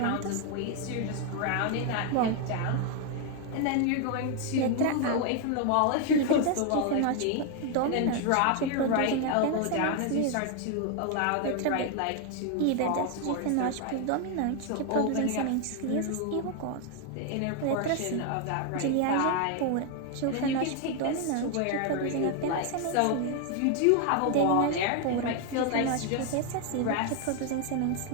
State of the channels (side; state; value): both; different; correlation 0.01